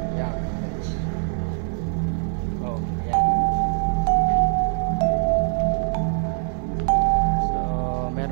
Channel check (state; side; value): silent; left; 63 dB below the other